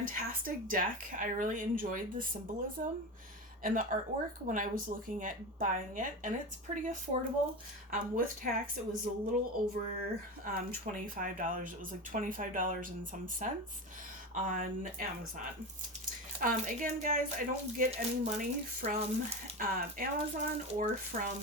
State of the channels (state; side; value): normal; both; correlation 0.23